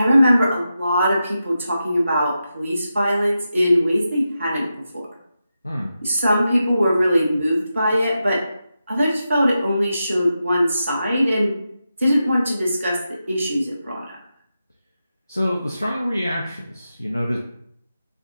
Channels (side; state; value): both; inverted; correlation -0.89